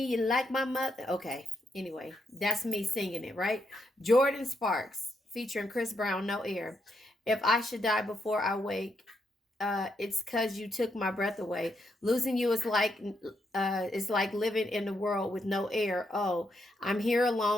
You like my mother. Okay, anyway, that's me singing it, right? Jordan Sparks featuring Chris Brown, No Air. If I should die before I wake, it's cause you took my breath away. Losing you is like living in the world with no air. Oh, I'm here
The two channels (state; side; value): normal; both; correlation 0.79